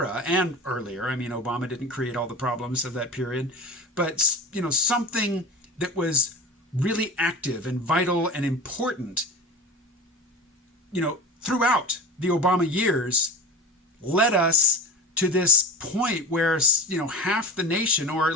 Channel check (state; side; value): normal; both; correlation 0.32